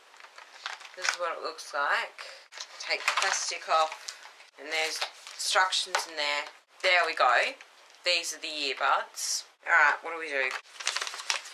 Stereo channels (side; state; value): both; identical; correlation 1.00